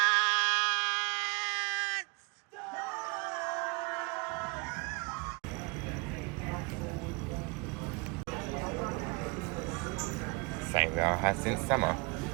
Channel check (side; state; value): left; quieter; 29.6 dB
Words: Same that I had since summer.